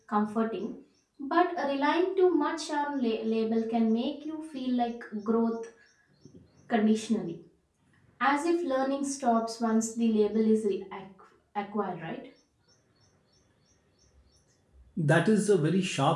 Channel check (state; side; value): identical; both; correlation 1.00